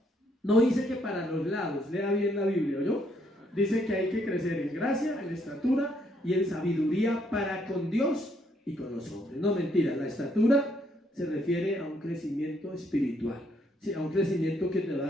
No dice que para los lados, lea bien la Biblia, ¿oyó? Dice que hay que crecer en gracia, en estatura y en sabiduría para con Dios y con los hombres. No, mentira, la estatura se refiere a un crecimiento espiritual, ¿sí? A un crecimiento que te va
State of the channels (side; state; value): both; normal; correlation 0.71